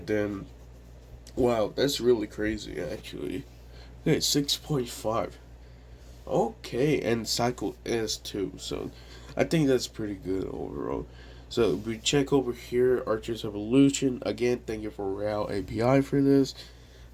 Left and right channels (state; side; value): identical; both; correlation 1.00